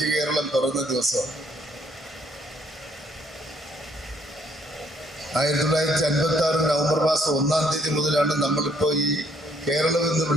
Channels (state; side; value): normal; both; correlation 0.68